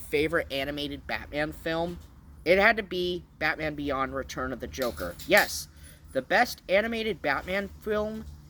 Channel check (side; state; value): both; identical; correlation 1.00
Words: animated Batman film, it had to be Batman Beyond: Return of the Joker. Yes, the best animated Batman film